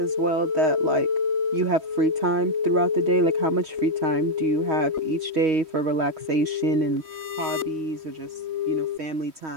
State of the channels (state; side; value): late; left; 3.1 ms